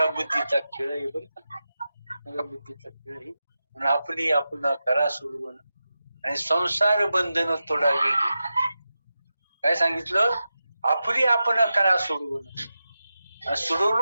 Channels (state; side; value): inverted; both; correlation -0.91